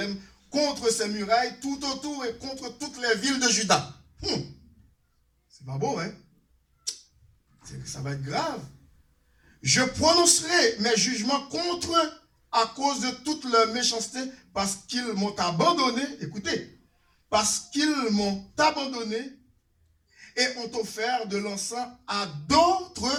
contre ses murailles, tout autour et contre toutes les villes de Juda. C'est pas beau, hein? Ça va être grave. Je prononcerai mes jugements contre eux à cause de toute leur méchanceté, parce qu'ils m'ont abandonné. Écoutez, parce qu'ils m'ont abandonné et ont offert de l'encens à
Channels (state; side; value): identical; both; correlation 1.00